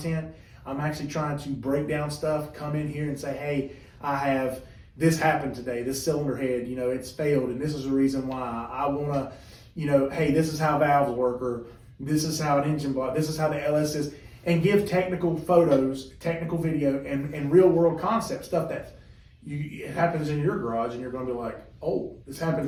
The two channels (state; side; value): identical; both; correlation 1.00